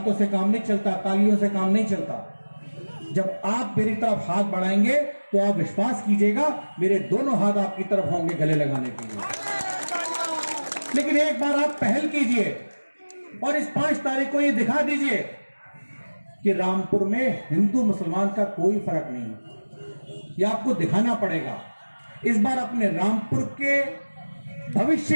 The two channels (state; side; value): inverted; both; correlation -1.00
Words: से काम नहीं चलता, तालियों से काम नहीं चलता। जब आप मेरी तरफ हाथ बढ़ाएंगे तो आप विश्वास कीजिएगा मेरे दोनों हाथ आपकी तरफ होंगे गले लगाने के लिए। लेकिन एक बार आप पहल कीजिए और इस 5 तारीख को ये दिखा दीजिए कि रामपुर में हिंदू मुसलमान का कोई फर्क नहीं है। ये आपको दिखाना पड़ेगा। इस बार अपने रामपुर के